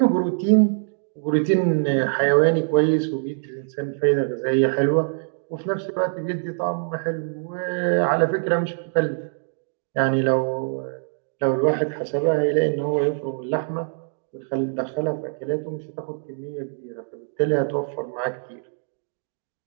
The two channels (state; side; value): silent; left; digital silence